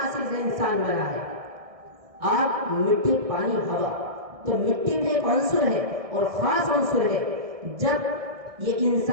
سے انسان بنا ہے، آگ، مٹی، پانی، ہوا۔ تو مٹی بھی ایک عنصر ہے اور خاص عنصر ہے۔ جب یہ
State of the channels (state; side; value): late; left; 1.6 ms